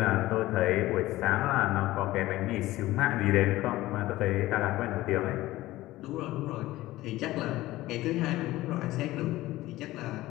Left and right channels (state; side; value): quieter; right; 17.1 dB